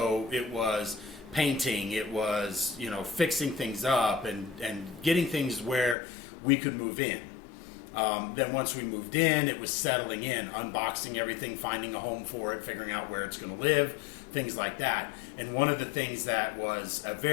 it was painting, it was, fixing things up and getting things where we could move in. Then once we moved in, it was settling in, unboxing everything, finding a home for it, figuring out where it's going to live, things like that. And one of the things that was a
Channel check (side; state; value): right; drops out; at 6.0 s